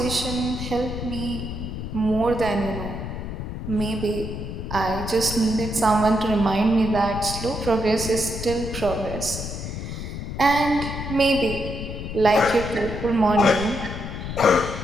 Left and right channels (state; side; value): noise; left; rumble, 6 dB below the sound